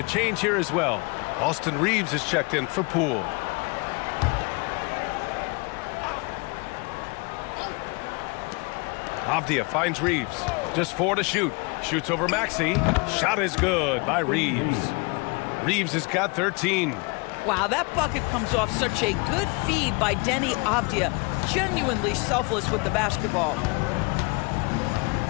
change here as well. Austin Reeves is checked in for Poole. Avdia finds Reeves. Just 4 to shoot. Shoots over Maxey. Shot is good by Reeves. Reeves has got 13. Wow, that bucket comes off such a good feed by Denny Avdia. Genuinely selfless with the basketball.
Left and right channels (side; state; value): right; quieter; 29.4 dB